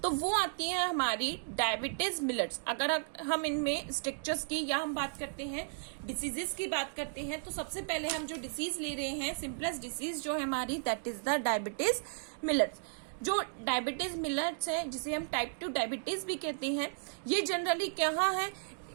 तो वो आती है हमारी डायबिटीज मिलेट्स। अगर हम इनमें स्ट्रक्चर्स की या हम बात करते हैं डिसीजेस की बात करते हैं, तो सबसे पहले हम जो डिसीज ले रहे हैं, सिंपलेस्ट डिसीज जो है हमारी, that is the diabetes millets. जो डायबिटीज मिलेट्स है, जिसे हम टाइप 2 डायबिटीज भी कहते हैं, ये जनरली क्या है,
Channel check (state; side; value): silent; left; digital silence